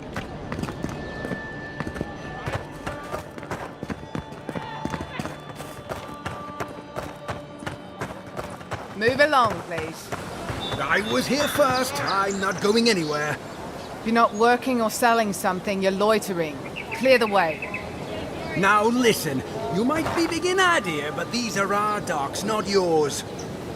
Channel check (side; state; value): both; identical; correlation 1.00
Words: Move along, please. I was here first. I'm not going anywhere. If you're not working or selling something, you're loitering. Clear the way. Now listen, you might be big in idea, but these are our docks, not yours.